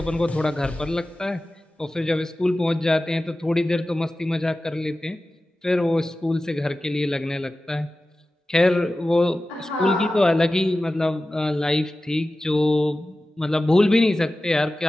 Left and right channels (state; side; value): normal; both; correlation 0.95